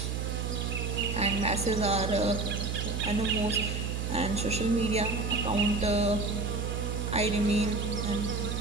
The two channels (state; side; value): noise; right; hum, 2 dB below the sound